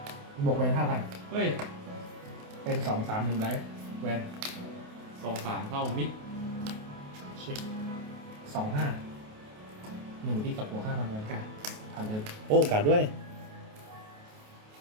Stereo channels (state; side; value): late; left; 28 ms